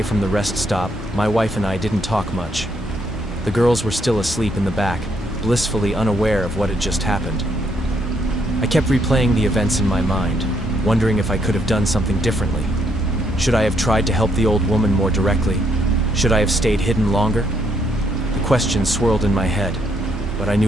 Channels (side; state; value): both; normal; correlation 0.73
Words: from the rest stop, my wife and I didn't talk much. The girls were still asleep in the back, blissfully unaware of what had just happened. I kept replaying the events in my mind, wondering if I could have done something differently. Should I have tried to help the old woman more directly? Should I have stayed hidden longer? The questions swirled in my head, but I